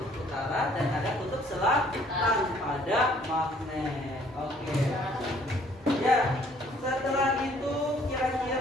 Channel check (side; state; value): both; normal; correlation 0.60